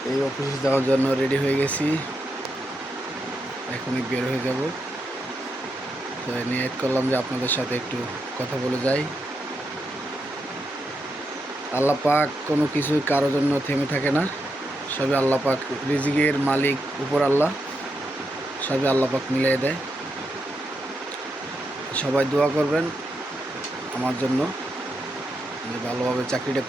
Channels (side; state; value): both; normal; correlation 0.84